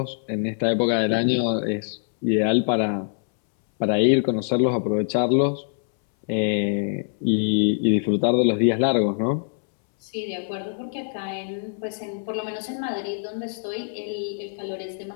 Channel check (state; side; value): silent; right; 63 dB below the other